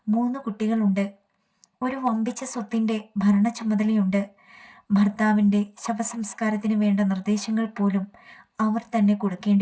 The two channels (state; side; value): identical; both; correlation 1.00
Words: 3 കുട്ടികളുണ്ട്. ഒരു വമ്പിച്ച സ്വത്തിൻ്റെ ഭരണ ചുമതലയുണ്ട്. ഭർത്താവിൻ്റെ ശവസംസ്കാരത്തിന് വേണ്ട നിർദ്ദേശങ്ങൾ പോലും അവർ തന്നെ